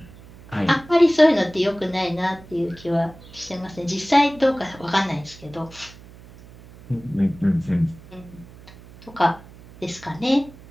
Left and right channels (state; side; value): noise; right; hum, 21 dB below the sound